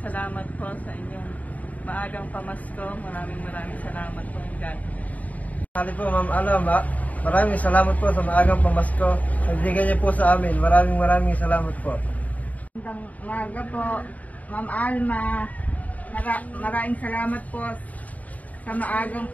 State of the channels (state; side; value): late; right; 0.073 ms